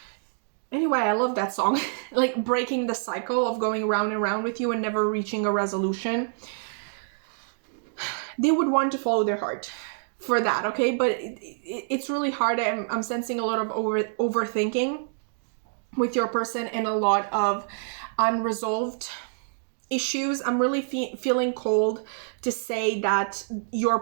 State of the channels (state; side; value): silent; left; digital silence